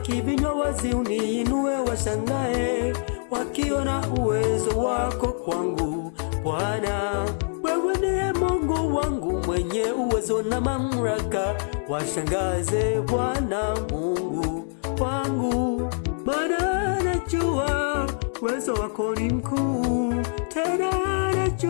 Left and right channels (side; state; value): right; silent; digital silence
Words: vinywa wazi, uniinue washangae, wakiona uwezo wako kwangu Bwana. Wewe ndiye Mungu wangu mwenye uwezo na mamlaka, washangaze Bwana Mungu wangu. Maana najua uwezo wako ni mkuu, tena